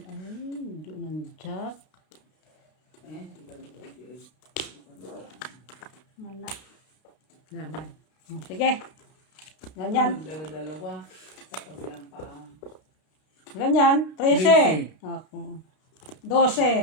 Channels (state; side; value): late; right; 32 ms